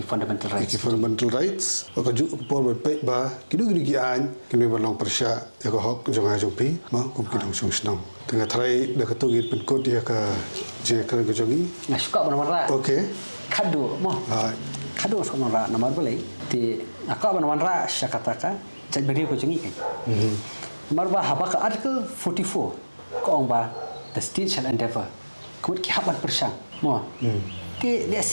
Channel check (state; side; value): inverted; both; correlation -1.00